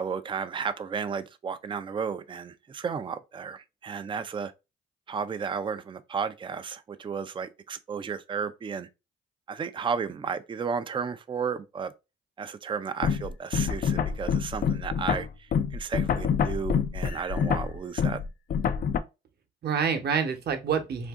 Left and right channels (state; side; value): normal; both; correlation 0.39